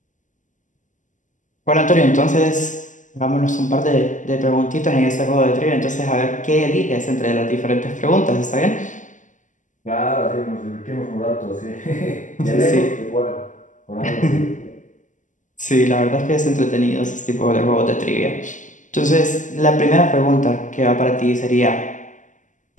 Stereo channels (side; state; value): right; late; 0.37 ms